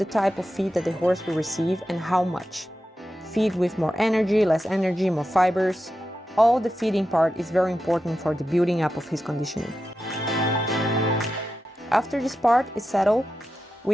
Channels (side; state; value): both; normal; correlation 0.90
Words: type of feed that the horse will receive and how much. Feed with more energy, less energy, more fibers. All the feeding part is very important for the building up of his conditioning. After this part is settled,